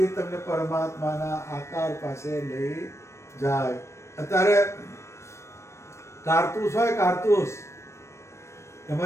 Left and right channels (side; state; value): right; late; 0.13 ms